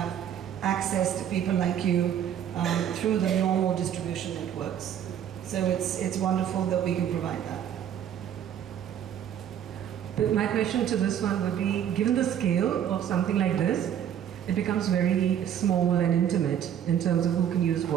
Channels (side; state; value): left; quieter; 9.7 dB